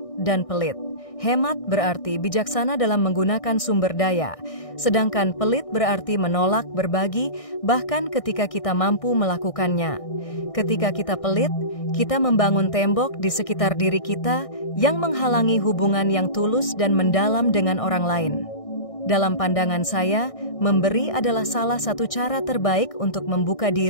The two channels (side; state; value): right; late; 1.6 ms